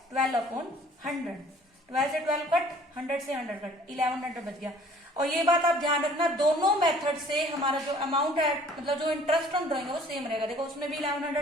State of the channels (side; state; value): both; normal; correlation 0.53